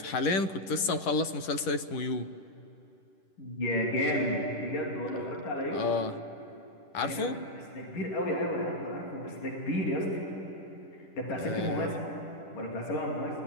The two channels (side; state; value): right; late; 10 ms